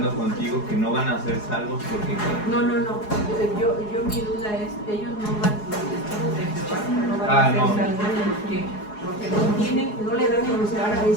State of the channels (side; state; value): right; late; 4.8 ms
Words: contigo que no van a ser salvos porque... No. Yo mi duda es, ellos no van, los testigos de Jehová no van a ser salvos porque no le dan el lugar palabra de